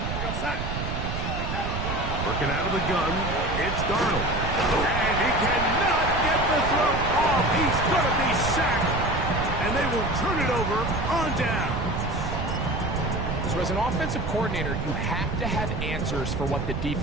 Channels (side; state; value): right; noise; rumble, 3 dB below the sound